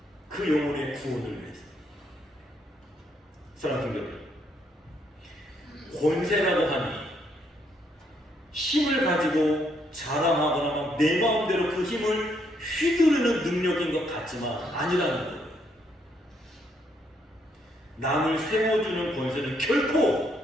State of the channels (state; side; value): normal; both; correlation 0.73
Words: 그 영혼의 구원을 위해서. 사랑하는 여러분, 권세라고 하니 힘을 가지고 자랑하거나 내 마음대로 그 힘을 휘두르는 능력인 것 같지만 아니라는 거예요. 남을 세워주는 권세는 결코